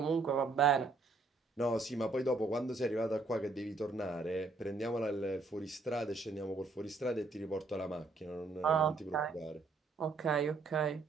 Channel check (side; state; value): left; quieter; 3.7 dB